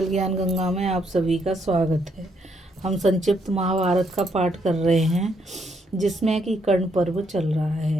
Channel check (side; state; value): both; normal; correlation 0.73